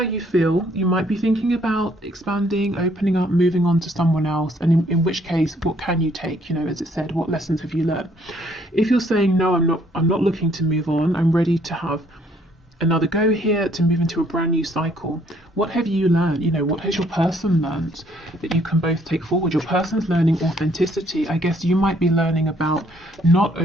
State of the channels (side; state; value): both; normal; correlation 0.65